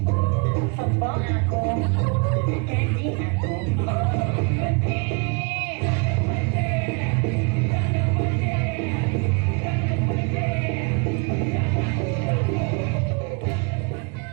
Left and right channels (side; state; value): left; quieter; 32.4 dB